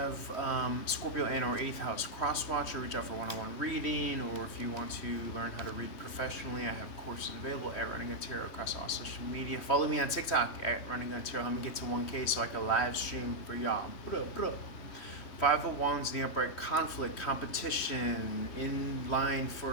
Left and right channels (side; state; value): right; late; 3.2 ms